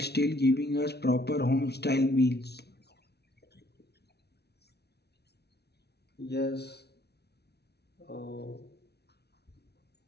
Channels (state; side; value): late; right; 0.48 ms